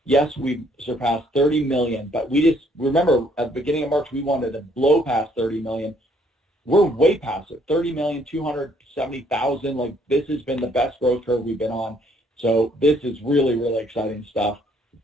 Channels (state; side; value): normal; both; correlation 0.65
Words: yes, we've surpassed 30 million, but we just, remember, at the beginning of March, we wanted to blow past 30 million. We're way past it, 30,270,000. Like, this has been the best growth curve we've been on. So this is really, really exciting stuff.